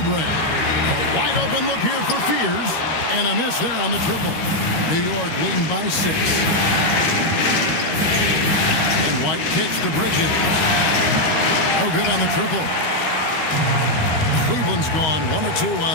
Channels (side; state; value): right; late; 13 ms